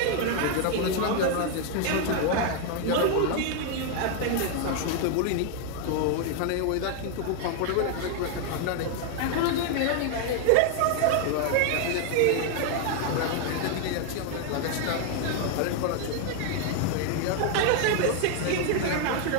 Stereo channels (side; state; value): both; different; correlation 0.01